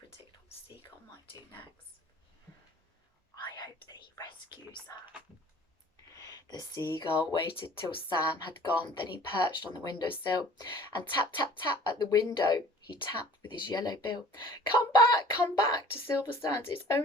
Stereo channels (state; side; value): normal; both; correlation 0.49